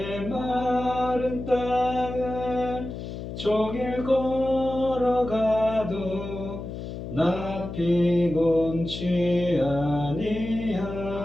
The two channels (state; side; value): noise; left; hum, 8 dB below the sound